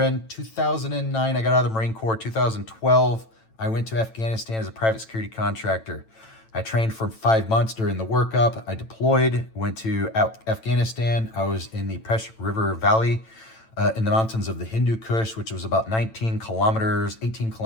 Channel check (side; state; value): right; late; 9.0 ms